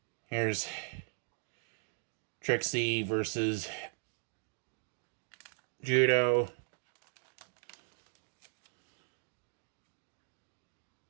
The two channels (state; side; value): silent; left; 52 dB below the other